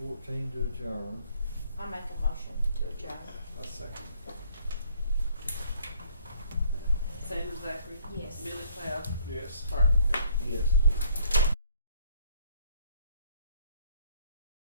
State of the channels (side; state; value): both; inverted; correlation -0.61